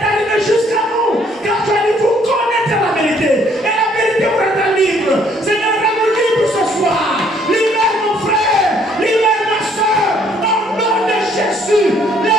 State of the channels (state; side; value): normal; both; correlation 0.64